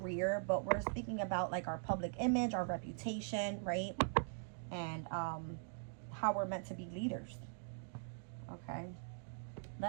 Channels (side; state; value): left; silent; digital silence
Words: but we're speaking about like our public image, our reputation, right? And how we're meant to be leaders. Okay,